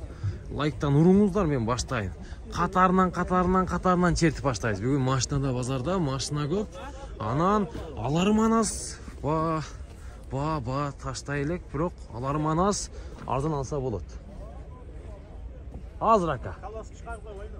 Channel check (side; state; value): both; identical; correlation 1.00